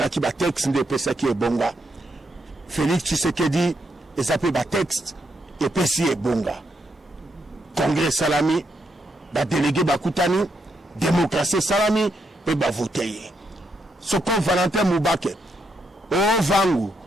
qui bat texte de Pesaki et Bonga. Félix Tshisekedi, et ça peut battre texte, et Pessi et Bonga. Congrès Salami, bah délégué Bakutani, démocratie Salami, et bah voter. Ce qu'on Valentin Moubake, oh Vangu,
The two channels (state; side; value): normal; both; correlation 0.79